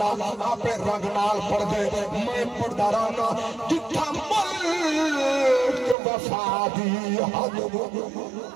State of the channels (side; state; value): left; drops out; at 6.0 s